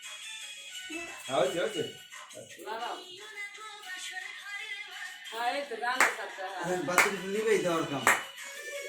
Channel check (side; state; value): both; identical; correlation 1.00